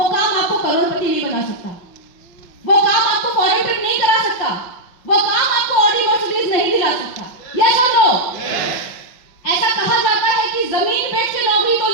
काम आपको करोड़पति नहीं बना सकता, वो काम आपको फॉरेन ट्रिप नहीं करा सकता, वो काम आपको ऑडी मर्सिडीज नहीं दिला सकता। यस और नो? ऐसा कहा जाता है कि जमीन बेच के नौकरी तो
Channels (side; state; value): right; late; 5.3 ms